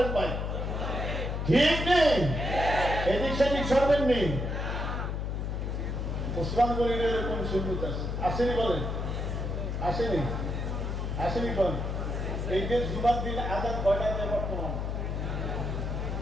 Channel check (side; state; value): left; noise; hum, 2 dB below the sound